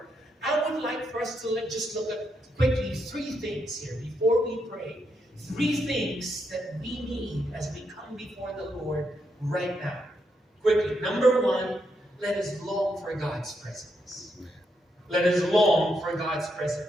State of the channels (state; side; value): normal; both; correlation 0.80